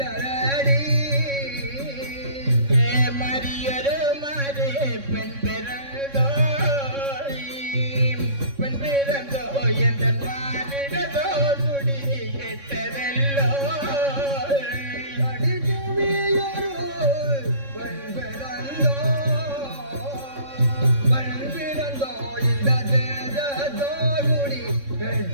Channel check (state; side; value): late; left; 3.6 ms